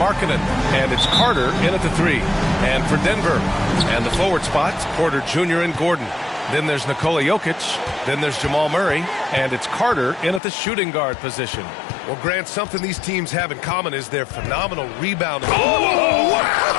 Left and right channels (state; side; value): drops out; right; at 10.4 s